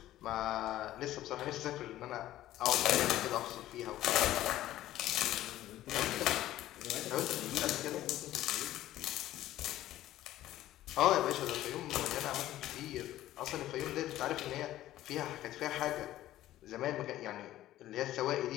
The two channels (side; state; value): right; quieter; 14.2 dB